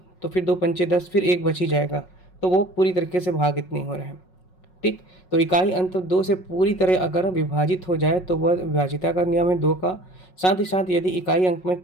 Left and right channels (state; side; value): late; right; 5.5 ms